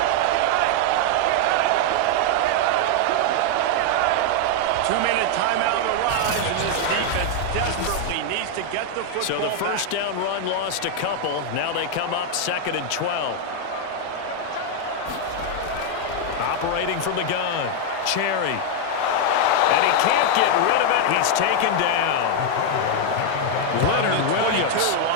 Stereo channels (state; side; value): different; both; correlation 0.00